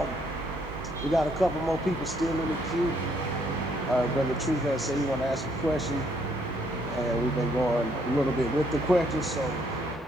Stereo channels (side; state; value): both; normal; correlation 0.69